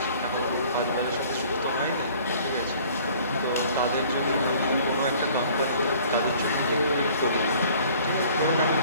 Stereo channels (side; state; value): both; inverted; correlation -0.53